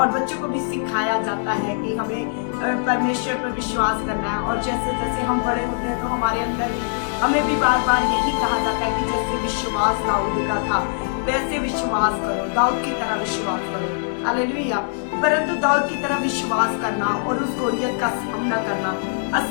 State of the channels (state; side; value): silent; right; digital silence